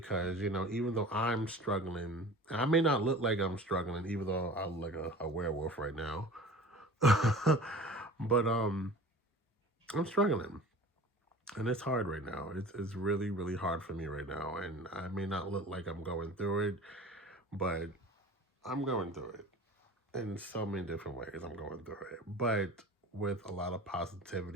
you know, even though I'm struggling, I may not look like I'm struggling, even though I look like a werewolf right now. But I'm struggling. And it's hard right now. It's really, really hard for me right now. And I may not look like I'm going through it, but I'm going through it. In so many different ways, I'm going through it. But with a lot of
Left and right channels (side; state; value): both; normal; correlation 0.40